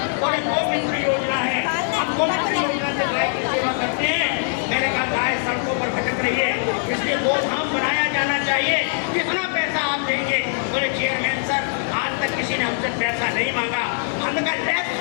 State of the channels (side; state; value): right; silent; 61 dB below the other